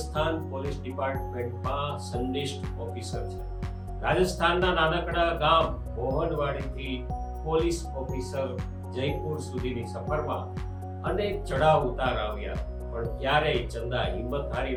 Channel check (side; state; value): both; identical; correlation 1.00